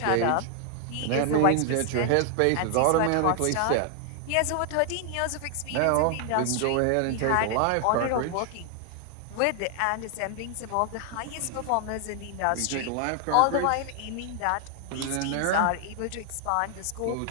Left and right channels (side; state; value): both; different; correlation 0.00